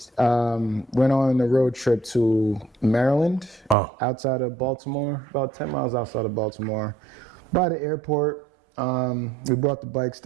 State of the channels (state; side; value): drops out; left; at 3.8 s